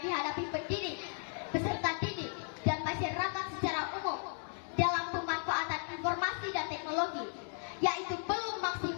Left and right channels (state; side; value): silent; right; 54 dB below the other